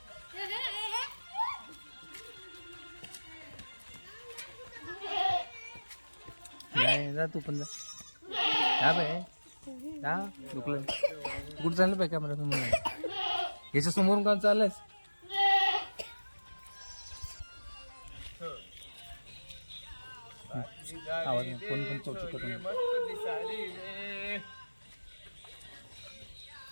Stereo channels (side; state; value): both; inverted; correlation -1.00